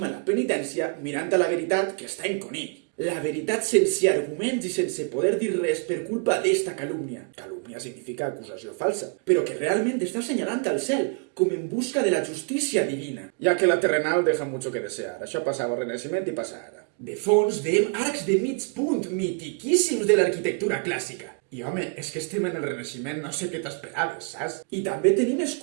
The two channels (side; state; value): left; quieter; 33.9 dB